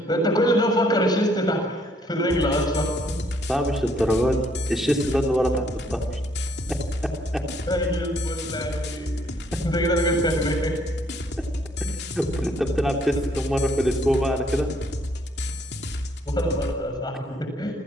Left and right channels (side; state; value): both; normal; correlation 0.67